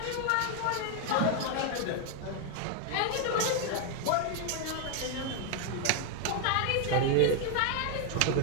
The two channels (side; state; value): both; different; correlation 0.01